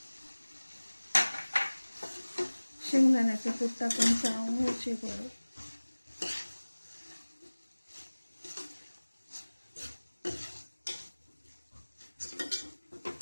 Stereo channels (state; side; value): inverted; both; correlation -1.00